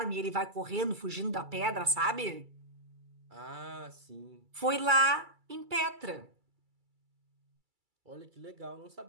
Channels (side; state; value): left; late; 2.3 ms